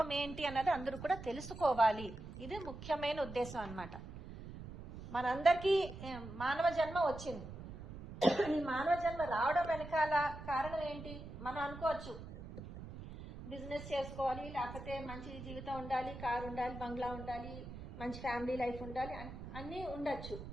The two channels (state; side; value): noise; right; rumble, 11 dB below the sound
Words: ఏంటి అన్నది అందరూ కూడా తెలుసుకోవాలి. ఇది ముఖ్యమైన ఉద్దేశం అన్నమాట. మనందరికీ మానవ జన్మ వచ్చింది. ఈ మానవ జన్మ రావడం వెనకాల కారణం ఏంటి? మనం అనుకోవచ్చు, బిజినెస్ చేసుకోవాలి, లేకపోతే మంచి జీవితం ఉండాలి, కారు ఉండాలి, బంగ్లా ఉండాలి, మంచి ఫ్యామిలీ లైఫ్ ఉండాలి, అన్నీ ఉండొచ్చు